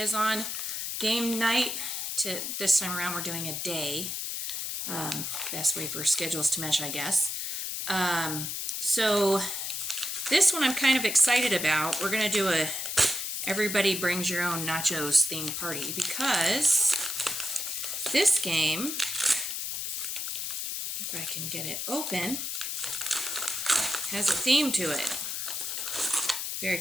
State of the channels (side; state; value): left; noise; hiss, 3 dB below the sound